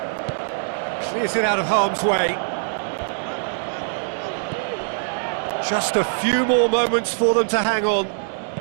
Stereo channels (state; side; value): silent; left; digital silence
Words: Clears it out of harm's way. Just a few more moments for them to hang on.